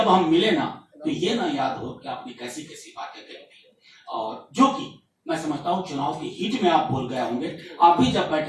हम मिले ना, तो ये ना याद हो कि आपने कैसी कैसी बातें कही थी, और जो कि मैं समझता हूं चुनाव की हीट में आप बोल गए होंगे। आप भी जब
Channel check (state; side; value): identical; both; correlation 1.00